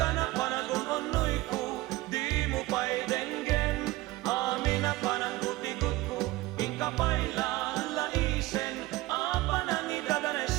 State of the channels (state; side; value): quieter; left; 19.1 dB